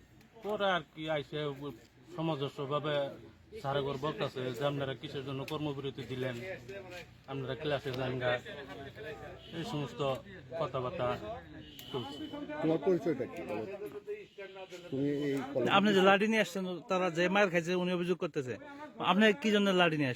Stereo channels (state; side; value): identical; both; correlation 1.00